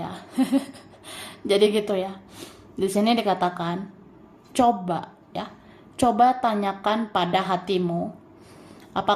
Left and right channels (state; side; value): identical; both; correlation 1.00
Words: Jadi gitu ya. Di sini dikatakan coba ya. Coba tanyakan pada hatimu,